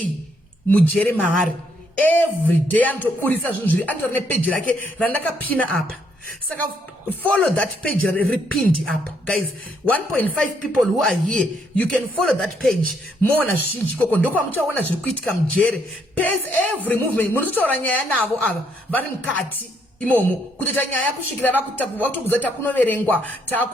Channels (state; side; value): normal; both; correlation 0.72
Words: mujere maari. Everyday anotoburisa zvinhu zviri, anotori nepage rake randakapina apa. Saka follow that page repinned up guys. 1.5 people who are here, you can follow that page. Mona zvizhinji koko ndokwa muchaona zviri kuitika mujere. Pace every movement. Munototaura nyaya navo ava vari mukati imomo kutoita nyaya kusvikira vakutobvudza takunoverengwa